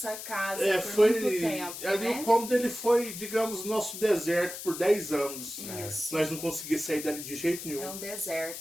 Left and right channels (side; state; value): left; noise; hiss, 9 dB below the sound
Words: casa por foi muito tempo, ali, né? o cômodo ele foi, digamos, nosso deserto por 10 anos. Isso. Nós não conseguimos sair dali de jeito nenhum. É um